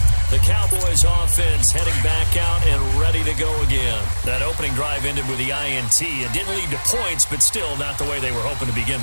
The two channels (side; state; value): both; inverted; correlation -1.00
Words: The Cowboys offense heading back out and ready to go again. That opening drive ended with the INT. It didn't lead to points, but still not the way they were hoping to begin